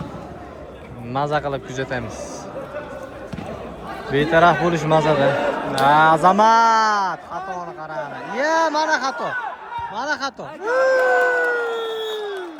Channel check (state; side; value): identical; both; correlation 1.00